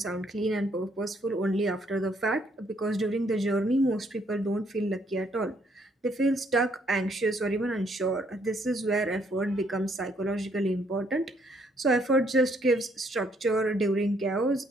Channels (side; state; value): both; normal; correlation 0.69